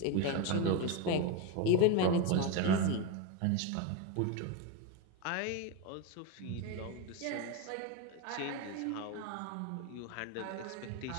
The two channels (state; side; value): different; both; correlation 0.03